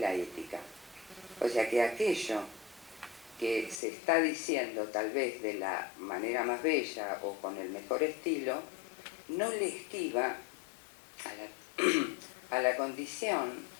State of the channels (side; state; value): right; drops out; at 3.8 s